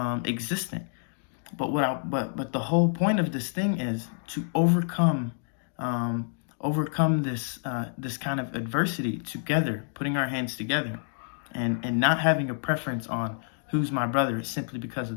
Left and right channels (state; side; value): silent; right; digital silence